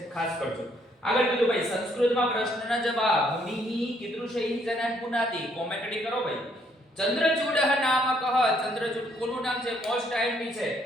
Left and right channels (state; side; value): normal; both; correlation 0.68